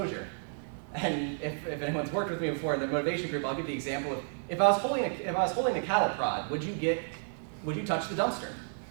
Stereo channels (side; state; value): left; silent; 57 dB below the other